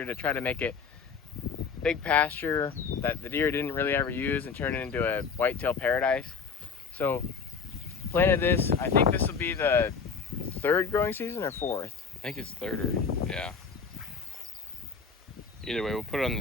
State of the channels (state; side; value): quieter; right; 5.4 dB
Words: to try to make it big pasture that the deer didn't really ever use and turn it into a whitetail paradise. So planted this, I think this will be the third growing season or fourth? I think it's third or, yeah. Either way, we'll put it on the